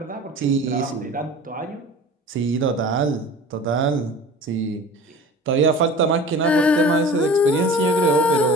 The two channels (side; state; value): both; normal; correlation 0.39